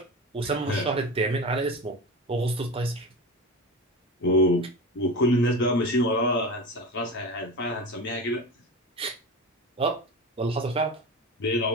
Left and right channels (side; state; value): both; normal; correlation 0.27